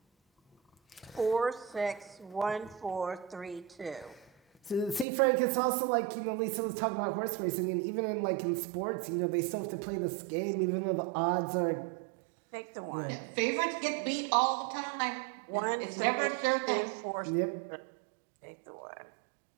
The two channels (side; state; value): left; drops out; at 5.1 s